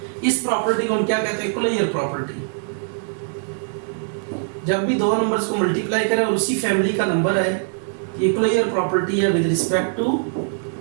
इस प्रॉपर्टी को हम क्या कहते हैं? Closure property. जब भी दो नंबर्स को मल्टीप्लाई करें और उसी फैमिली का नंबर आए, ये क्लोजर प्रॉपर्टी है विद रिस्पेक्ट टू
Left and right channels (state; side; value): silent; left; digital silence